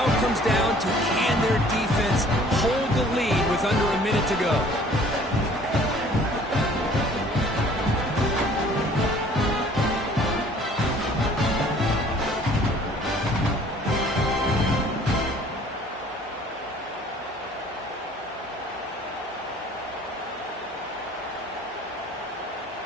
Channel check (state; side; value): normal; both; correlation 0.54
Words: it comes down to can their defense hold the lead with under a minute to go.